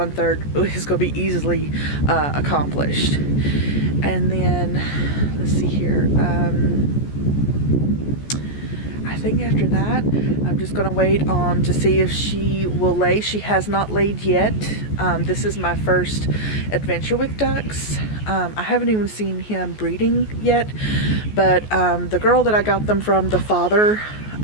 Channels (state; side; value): late; right; 14 ms